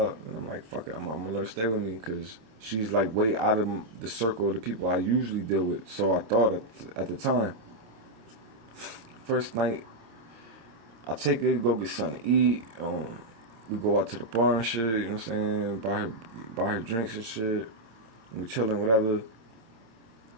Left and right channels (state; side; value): late; left; 27 ms